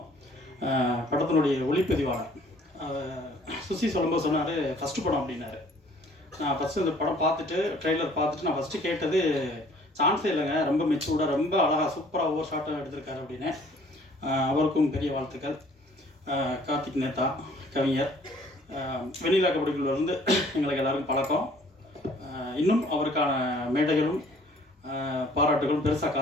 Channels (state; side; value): normal; both; correlation 0.57